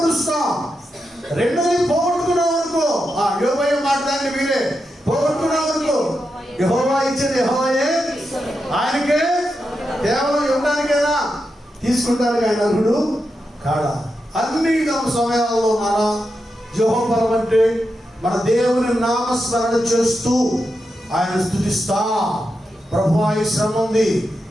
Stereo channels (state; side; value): normal; both; correlation 0.87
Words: రెండోది పోగొట్టుకున్నాం అనుకో, యోబయ్య మాట్లాడి మీరే పోగొట్టుకున్నాం అనుకో, యెహోవా ఇచ్చేది యెహోవాయే, ఆయనకే కేవలం ఇవ్వడానికేనా, తీసుకుంటానికి ఆయన అర్హుడు కాడా. అన్ని సమయాల్లో మన యెహోవా అంటే మన దేవుని నామస్మరణ చేస్తూ ఆయన స్తుతిస్తా. ప్రభువా ఈ శ్రమ ఉంది,